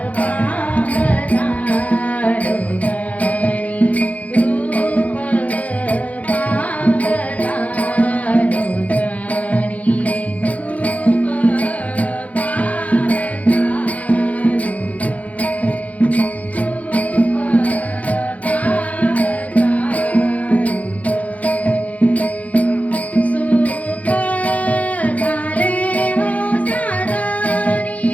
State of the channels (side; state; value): right; late; 0.070 ms